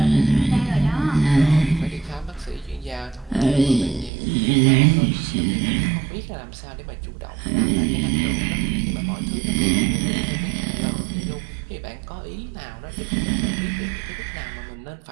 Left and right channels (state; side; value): drops out; left; at 4.1 s